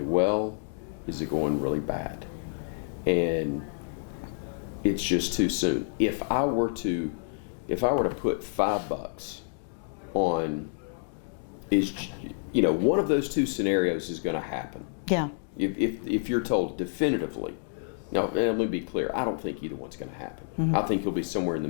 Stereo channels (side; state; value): right; silent; digital silence